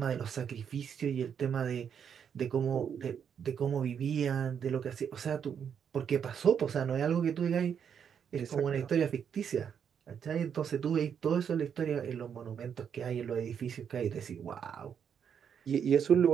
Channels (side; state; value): left; quieter; 7.8 dB